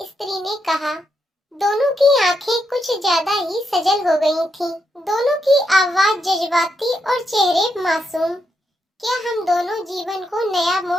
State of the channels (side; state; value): both; normal; correlation 0.81